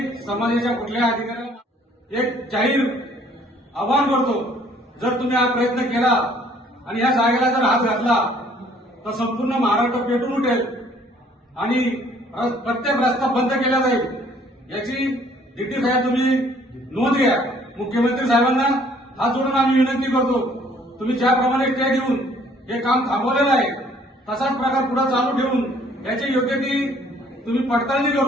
समाजाच्या कुठल्याही अधिकाऱ्याला एक जाहीर आवाहन करतो, जर तुम्ही हा प्रयत्न केला आणि या जागेला जर हात घातला तर संपूर्ण महाराष्ट्र पेटून उठेल आणि प्रत्येक रस्ता बंद केला जाईल। याची डिटी साहेब तुम्ही नोंद घ्या। मुख्यमंत्री साहेबांना हात जोडून आम्ही विनंती करतो, तुम्ही ज्याप्रमाणे स्टे देऊन हे काम थांबवलेलं आहे तसाच प्रकार पुढे चालू ठेवून याची योग्य ती तुम्ही पडताळणी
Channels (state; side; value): normal; both; correlation 0.60